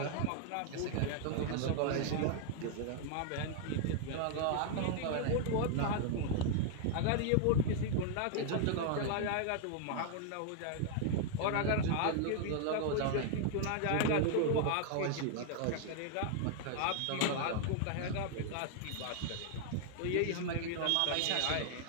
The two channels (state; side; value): different; both; correlation -0.01